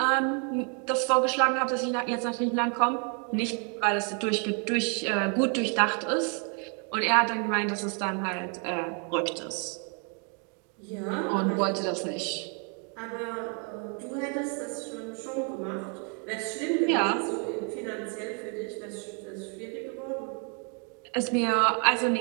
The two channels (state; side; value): quieter; left; 38.8 dB